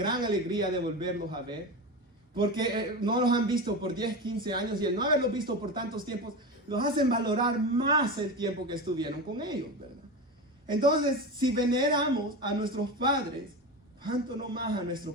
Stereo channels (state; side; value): normal; both; correlation 0.23